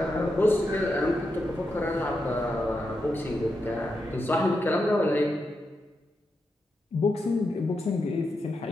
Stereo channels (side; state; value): both; normal; correlation 0.86